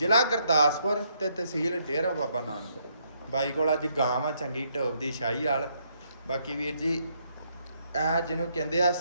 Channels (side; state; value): both; inverted; correlation -0.73